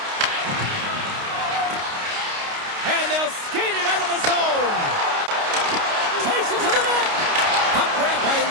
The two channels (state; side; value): late; left; 29 ms